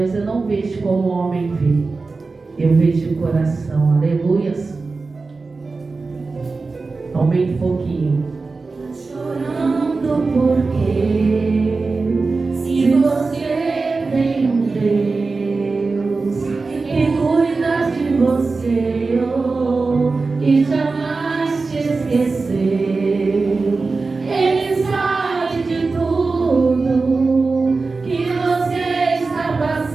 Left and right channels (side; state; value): left; quieter; 4.0 dB